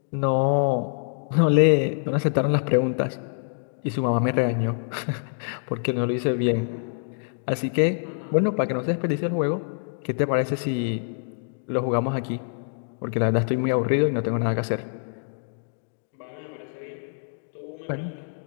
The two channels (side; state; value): right; silent; digital silence